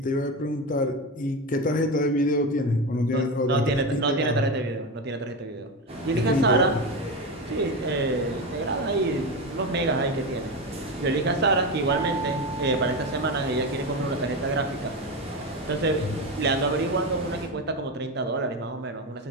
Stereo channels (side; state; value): both; normal; correlation 0.18